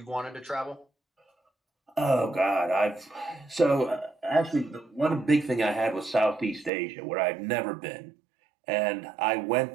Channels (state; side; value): drops out; left; at 6.7 s